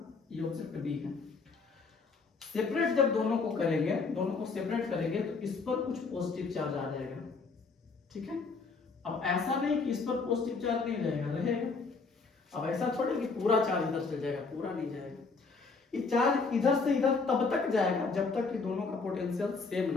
ये ऑब्जेक्ट बी है, सेपरेट जब दोनों को करेंगे, दोनों को सेपरेट करेंगे तो इस पर कुछ पॉजिटिव चार्ज आ जाएगा, ठीक है। अब ऐसा नहीं कि इस पर पॉजिटिव चार्ज नहीं रहेगा, रहेगा। अब ऐसा थोड़ी कि पूरा चार्ज इधर से जाएगा, पूरा नहीं जाएगा। ये चार्ज इधर से इधर तब तक जाएगा जब तक कि दोनों का पोटेंशियल सेम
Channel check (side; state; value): right; quieter; 4.4 dB